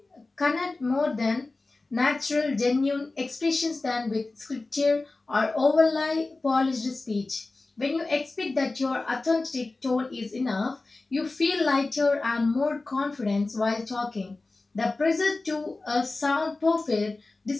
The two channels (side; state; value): right; quieter; 3.3 dB